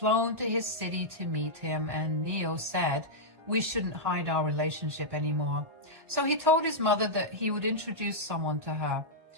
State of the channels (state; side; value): late; left; 1.6 ms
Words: to his city to meet him, and Neil said we shouldn't hide our relationship anymore. So he told his mother that he would introduce someone to her.